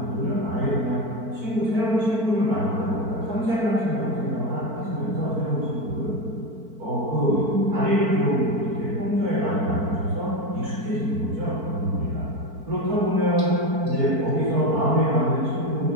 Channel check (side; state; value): left; late; 4.5 ms